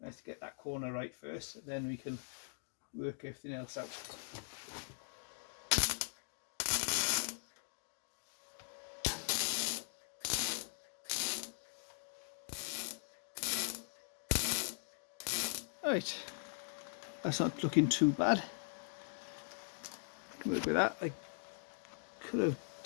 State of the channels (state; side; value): silent; right; digital silence